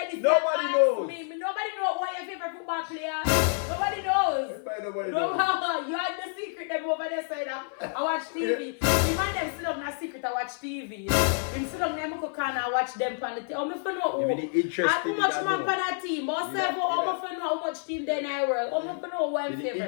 this, Nobody knows. Nobody knows what your favorite football player. Nobody knows. Nobody knows. You had the secret them over there side. I watch TV. The man them sit up in a secret. I watch TV. Him sit up in cook and I watch them on the TV. How much fun know? How much man on that team? How much fun know how much team then I work? How much fun know what I'm favorite?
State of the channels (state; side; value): silent; right; 56 dB below the other